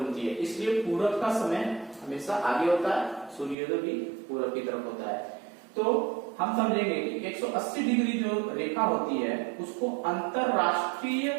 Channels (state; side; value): drops out; left; at 3.6 s